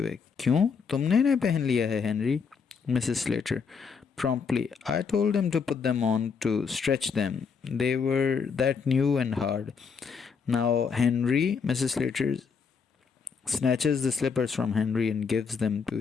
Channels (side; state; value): right; quieter; 5.8 dB